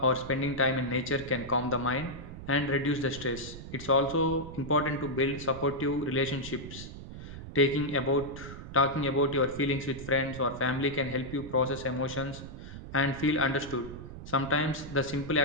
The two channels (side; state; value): right; noise; rumble, 12 dB below the sound